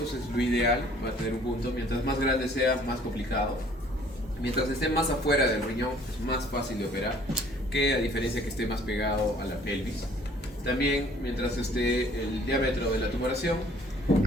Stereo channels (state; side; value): normal; both; correlation 0.57